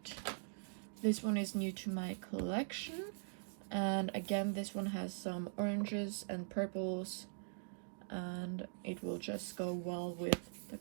This one is new to my collection, and again, this one has some oranges and purples, and it will just go well with the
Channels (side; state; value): left; silent; digital silence